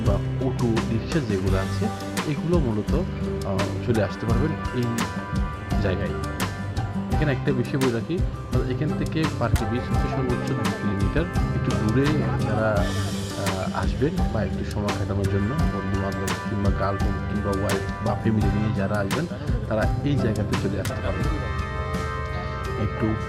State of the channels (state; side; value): identical; both; correlation 1.00